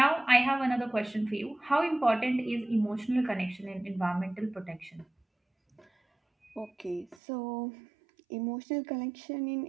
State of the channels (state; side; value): drops out; left; at 7.2 s